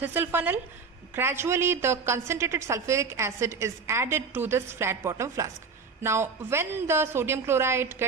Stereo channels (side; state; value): left; quieter; 5.1 dB